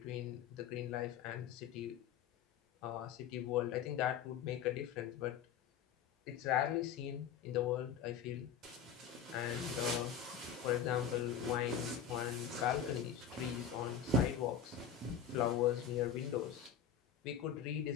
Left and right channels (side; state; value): right; quieter; 7.8 dB